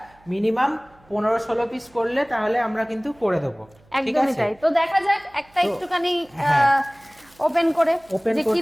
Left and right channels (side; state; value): right; noise; hum, 30 dB below the sound